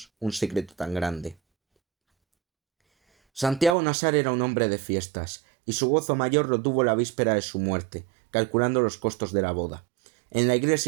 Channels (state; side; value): drops out; left; at 3.8 s